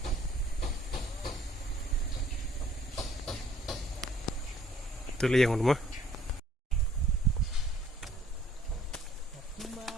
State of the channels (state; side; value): normal; both; correlation 0.61